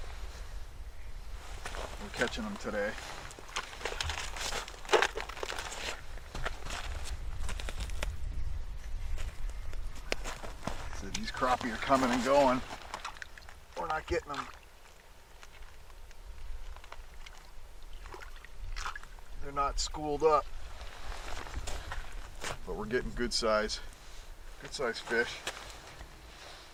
we're catching them today. So these crappie are coming and going. We're not getting them. They're not schooled up, but we're getting good size fish.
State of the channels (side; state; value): both; identical; correlation 1.00